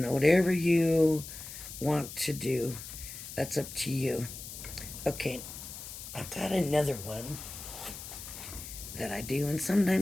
know, whatever you want to do, that's up to you. Okay, I've got another one that I do, and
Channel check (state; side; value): noise; left; hiss, 11 dB below the sound